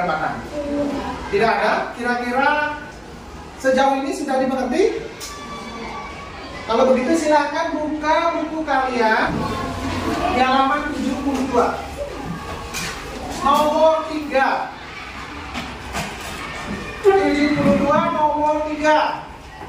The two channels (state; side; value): identical; both; correlation 1.00